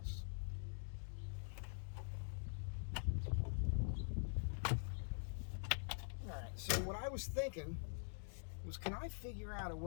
All right, so what I was thinking was, can I figure out a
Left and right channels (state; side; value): silent; right; digital silence